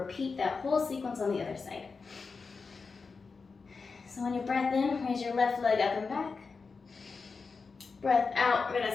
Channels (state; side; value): quieter; right; 4.7 dB